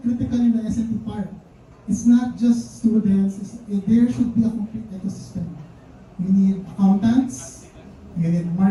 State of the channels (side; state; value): both; identical; correlation 1.00